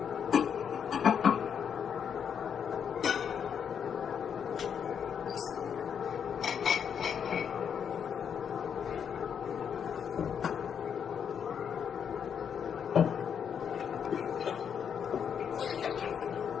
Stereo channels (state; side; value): quieter; right; 7.7 dB